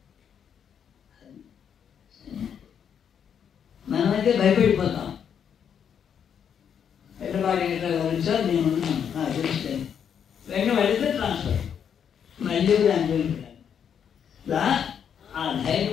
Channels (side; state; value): right; quieter; 8.0 dB